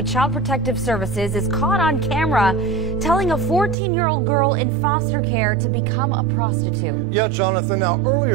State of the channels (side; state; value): left; drops out; at 3.8 s